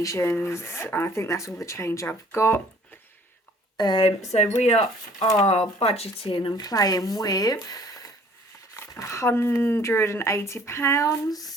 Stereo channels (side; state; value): both; normal; correlation 0.55